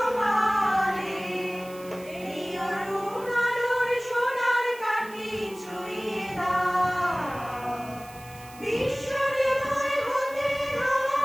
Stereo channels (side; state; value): right; noise; hiss, 20 dB below the sound